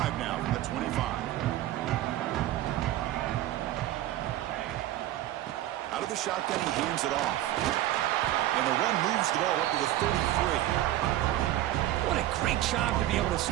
now from the 25. Out of the shotgun, he hands it off. And the run moves the ball up to the 33. What a great job to be able to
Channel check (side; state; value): left; quieter; 14.2 dB